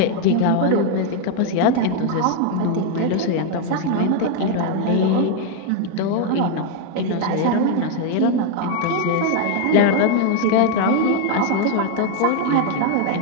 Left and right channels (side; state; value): both; different; correlation 0.00